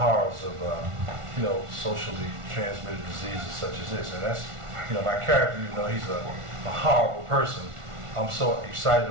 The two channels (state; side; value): late; left; 1.4 ms